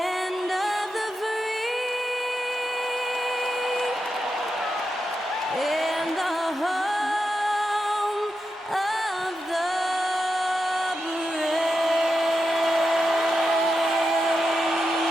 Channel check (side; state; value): both; normal; correlation 0.88